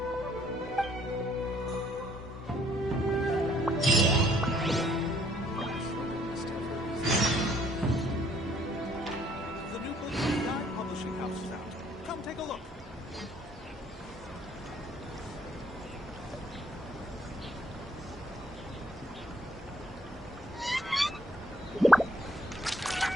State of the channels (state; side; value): normal; both; correlation 0.63